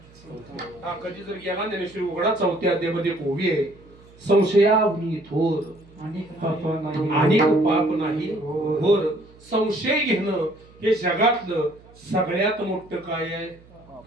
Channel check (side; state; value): right; noise; hum, 25 dB below the sound